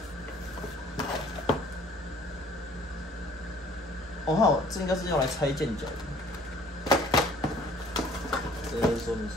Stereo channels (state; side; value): normal; both; correlation 0.56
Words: 好，这应该是用来拆键脚的。这个是说明书，